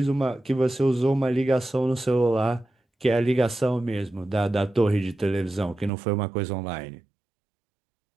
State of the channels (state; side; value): drops out; left; at 5.9 s